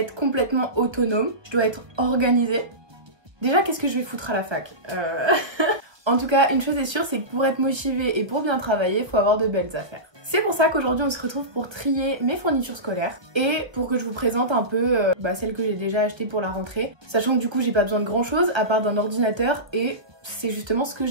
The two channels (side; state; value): left; late; 1.1 ms